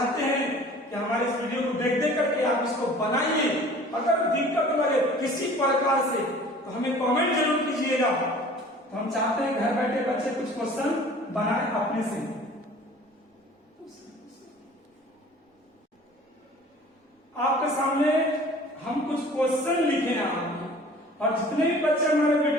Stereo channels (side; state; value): both; normal; correlation 0.47